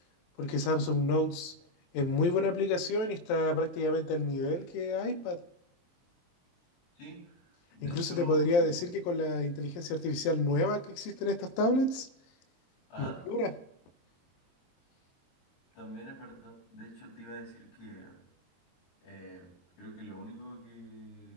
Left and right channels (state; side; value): late; right; 23 ms